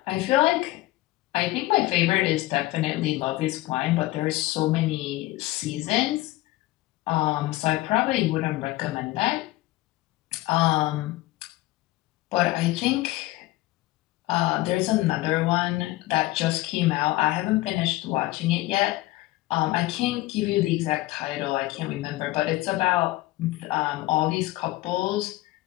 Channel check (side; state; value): right; quieter; 18.4 dB